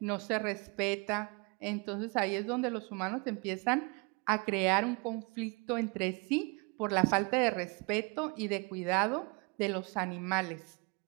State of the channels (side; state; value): left; quieter; 30.7 dB